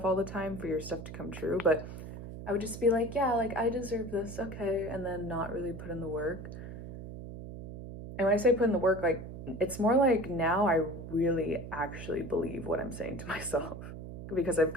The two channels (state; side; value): noise; right; hum, 11 dB below the sound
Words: all the time for your stuff to come true, but I would just be like, yeah, like I deserve this, okay, and then not really put in the work. And when I say put in the work, like it's more like now I really actually believe what I'm saying to myself because I've